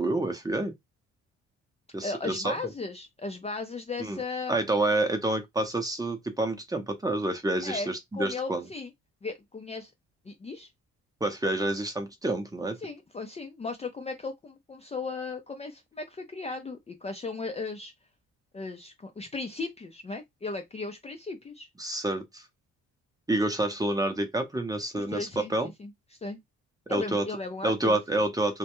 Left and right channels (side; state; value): both; normal; correlation 0.59